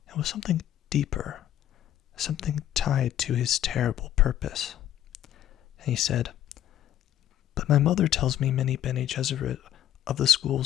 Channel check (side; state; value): right; quieter; 11.5 dB